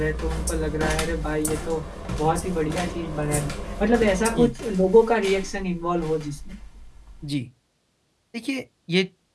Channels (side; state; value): both; identical; correlation 1.00